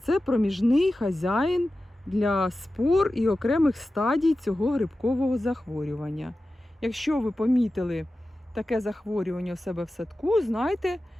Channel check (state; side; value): normal; both; correlation 0.94